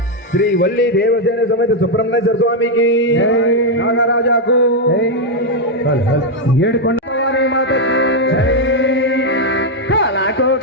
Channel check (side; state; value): both; normal; correlation 0.01